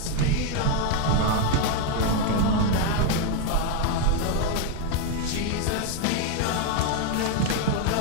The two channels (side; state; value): both; different; correlation 0.01